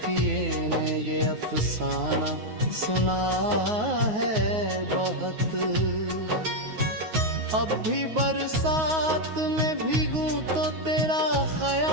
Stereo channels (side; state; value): left; late; 9.4 ms